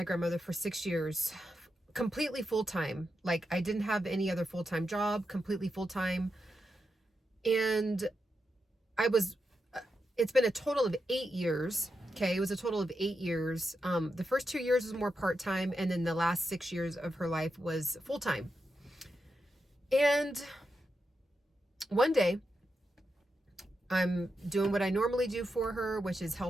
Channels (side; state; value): both; normal; correlation 0.86